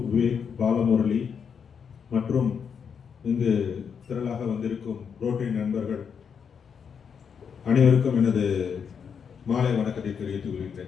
Vivek, Balamurali மற்றும் இங்கு திரளாக வந்திருக்கும் ரோட்டரி நண்பர்கள் அனைவருக்கும் எனது மாலை வணக்கத்தை தெரிவித்துக்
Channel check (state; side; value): quieter; right; 6.8 dB